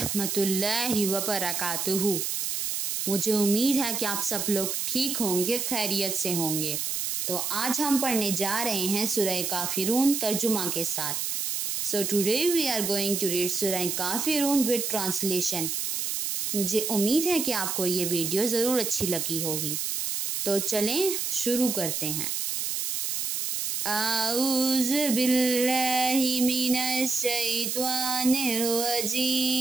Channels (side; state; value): right; noise; hiss, 1 dB below the sound